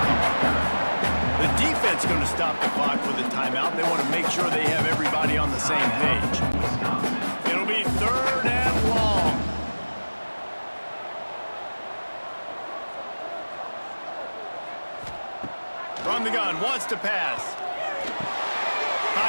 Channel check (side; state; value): both; inverted; correlation -1.00